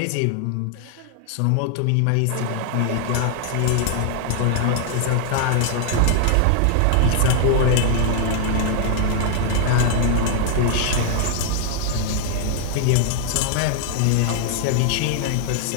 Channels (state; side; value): different; both; correlation 0.00